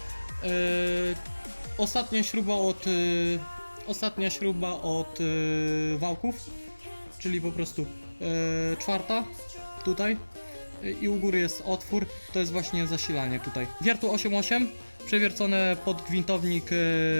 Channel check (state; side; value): inverted; both; correlation -1.00